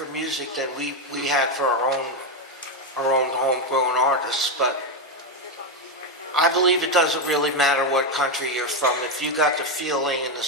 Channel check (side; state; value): both; normal; correlation 0.07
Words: music than we had for our own homegrown artists. But I believe it doesn't really matter what country you're from. If you got the feeling and the